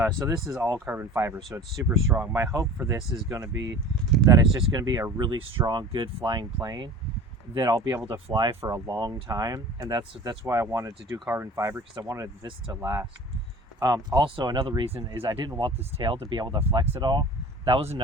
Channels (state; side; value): normal; both; correlation 0.41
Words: So this is all carbon fiber, so it's super strong. My hope for this is going to be that it's just going to be a really strong, good flying plane that I'll be able to fly for a long time, and that's why I wanted to do carbon fiber, because I wanted this to last. Also, another reason is I didn't want this tail to be able to flex at all. That was